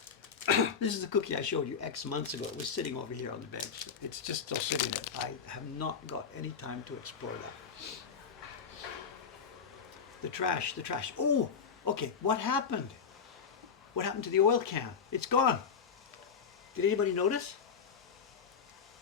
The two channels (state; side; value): quieter; right; 6.3 dB